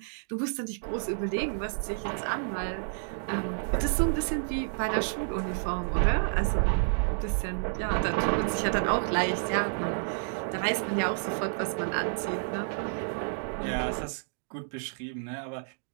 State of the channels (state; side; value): silent; left; digital silence